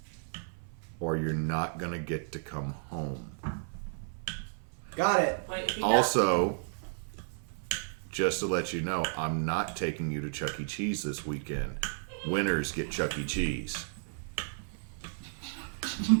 or you're not gonna get to come home. Got it. Wait, if he Also, just to let you know, I'm not taking you to Chuck E. Cheese this weekend. Winners get Chuck E. Cheese.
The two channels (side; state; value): left; silent; 56 dB below the other